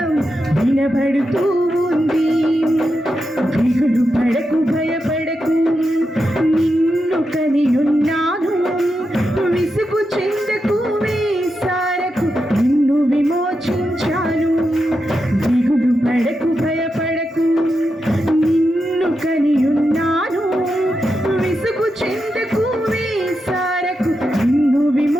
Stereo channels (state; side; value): normal; both; correlation 0.87